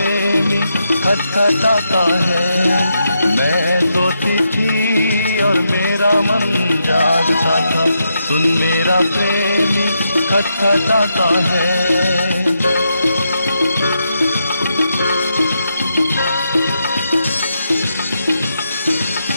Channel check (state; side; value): inverted; both; correlation -0.83